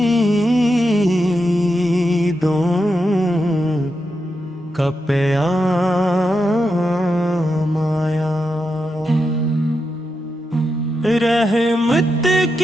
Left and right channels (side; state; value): both; normal; correlation 0.86